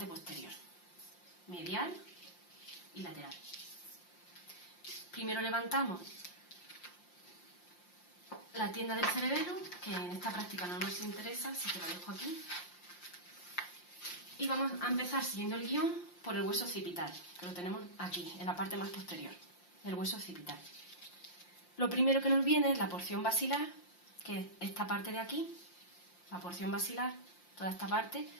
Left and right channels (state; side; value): late; right; 5.7 ms